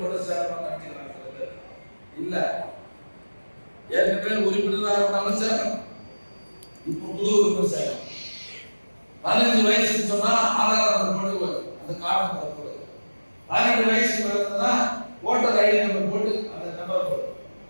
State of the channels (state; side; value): inverted; both; correlation -1.00